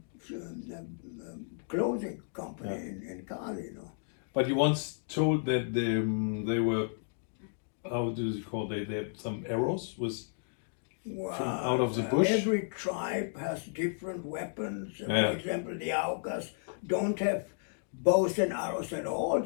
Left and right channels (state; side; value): silent; right; digital silence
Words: clothing company in Cali, you know. But you once told that they were, how do you call they had some arrows with from out of the bush? Every tribe has different weapons. Yeah. For example, the Orcas don't have bows and arrows at all.